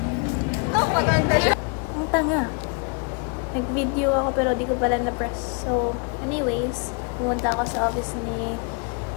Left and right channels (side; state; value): right; quieter; 35.4 dB